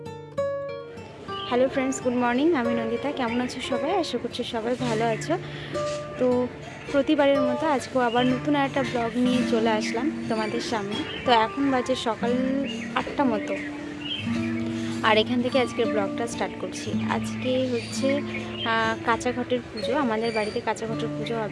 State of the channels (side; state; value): both; identical; correlation 1.00